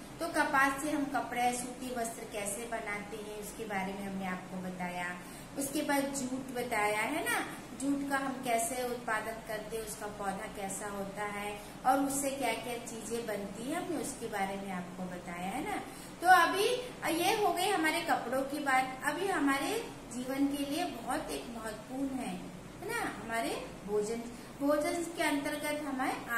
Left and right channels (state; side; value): identical; both; correlation 1.00